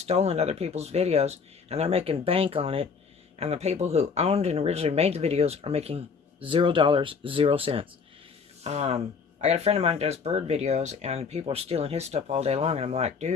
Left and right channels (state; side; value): quieter; right; 5.5 dB